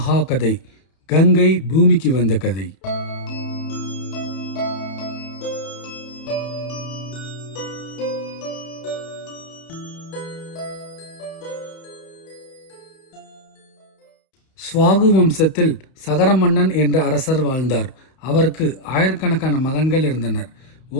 கதை. கங்கை பூமிக்கு வந்த கதை. ஸ்வாகு வம்சத்தில் சகர மன்னன் என்ற அரசர் வாழ்ந்தார். அவருக்கு ஆயிரக்கணக்கான மகன்கள் இருந்தனர்.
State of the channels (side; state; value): right; late; 31 ms